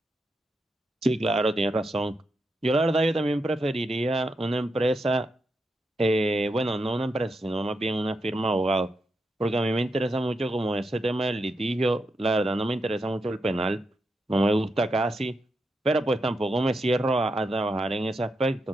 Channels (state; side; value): normal; both; correlation 0.84